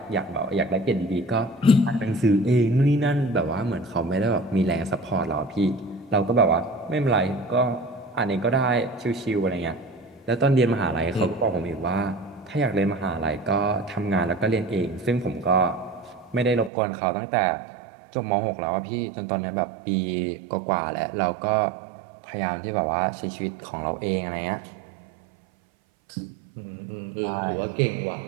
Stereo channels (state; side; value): drops out; left; at 16.7 s